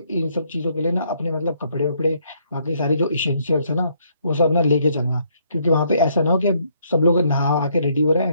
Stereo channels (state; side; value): inverted; both; correlation -0.69